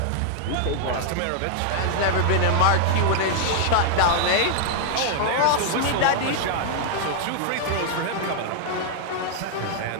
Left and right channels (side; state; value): both; different; correlation 0.00